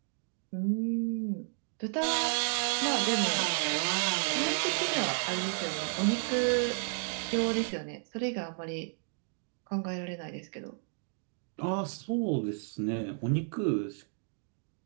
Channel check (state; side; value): silent; left; 56 dB below the other